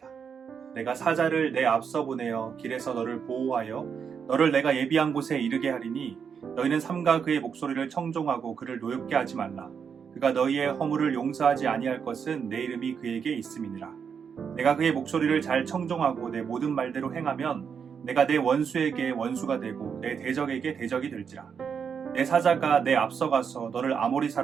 내가 사자를 내 앞서 보내어 길에서 너를 보호하여 너를 내가 예비한 곳에 이르게 하리니 너희는 삼가 그의 목소리를 청종하고 그를 노엽게 하지 말라. 그가 너희의 허물을 용서하지 아니할 것은 내 이름이 그에게 있음이니라. 내가 그의 목소리를 잘 청종하고 내 모든 말대로 행하면 내가 내 원수에게 원수가 되고 내 대적에게 대적이 될지라. 내 사자가 내 앞서가서 너를 아모리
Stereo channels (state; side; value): quieter; left; 6.8 dB